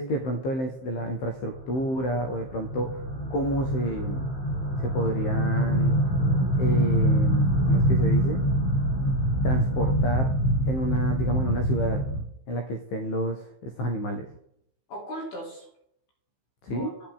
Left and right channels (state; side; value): late; right; 15 ms